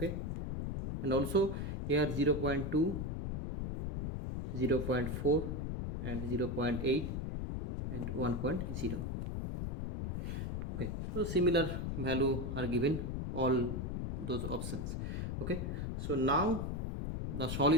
and also here 0.2, 0.4 and 0.8 and 1.0. Okay, so similar value are given all those options. Okay, so now the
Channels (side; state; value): left; noise; rumble, 3 dB below the sound